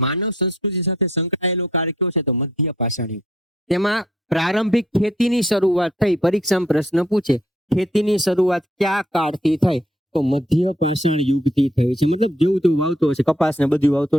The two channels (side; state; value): both; normal; correlation 0.67